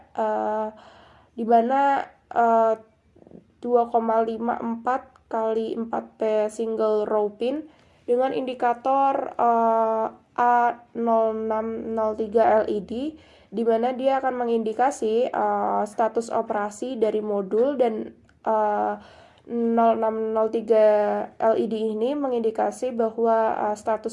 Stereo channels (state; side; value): identical; both; correlation 1.00